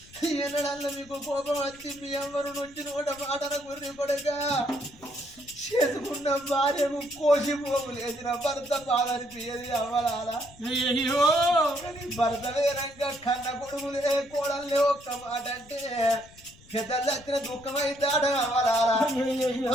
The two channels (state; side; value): noise; left; rumble, 24 dB below the sound